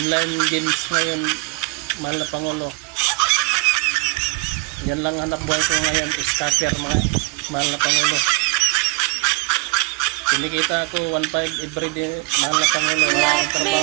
games ngayon, mahal na Pangulo. Yan lang hanap buhay ko ngayon, scatter mga mahal na Pangulo. Kinikita ako 1.5 everyday, mahal na Pangulo. Let me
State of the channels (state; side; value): quieter; left; 29.7 dB